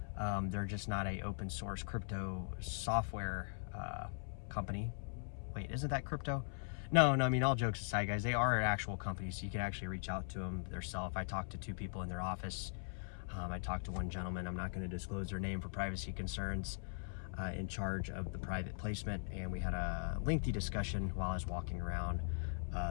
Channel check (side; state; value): right; silent; 51 dB below the other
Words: They're just not a open source crypto software company. Wait, isn't that crypto? No, I mean, all jokes aside, guys, they are an actual company, so you can actually reach out to them themselves. I talked to two people in their office. I talked to one gentleman. I'm not going to disclose their name for privacy concerns, in charge of the private placement, and we had a lengthy discussion while I was walking around